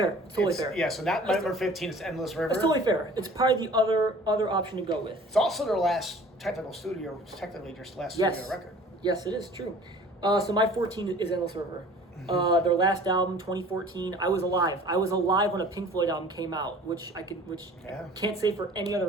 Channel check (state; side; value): normal; both; correlation 0.48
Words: It's totally fair. Yeah. So that number 15 is Endless River. It's totally fair. It's probably the other option to go with. It's also their last technically studio record. Yes, it is true. So my 14 is Endless River. Mm-hmm. Their last album, 2014. I was alive. When a Pink Floyd album came out, which can't say for any